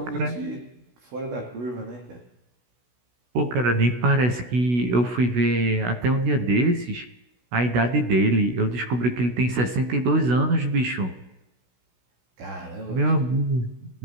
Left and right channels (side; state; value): left; late; 16 ms